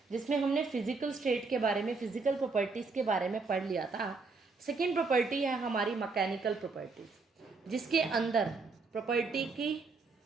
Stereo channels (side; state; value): left; quieter; 4.2 dB